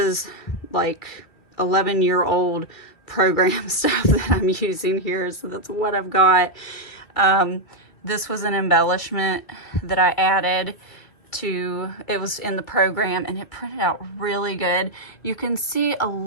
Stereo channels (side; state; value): right; late; 2.3 ms